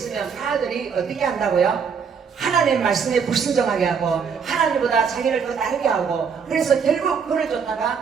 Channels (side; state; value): left; quieter; 6.4 dB